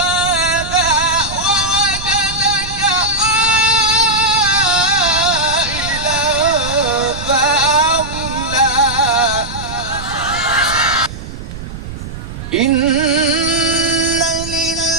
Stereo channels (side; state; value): right; noise; rumble, 10 dB below the sound